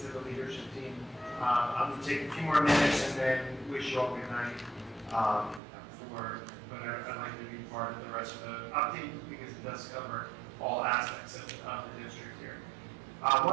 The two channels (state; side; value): drops out; left; at 5.6 s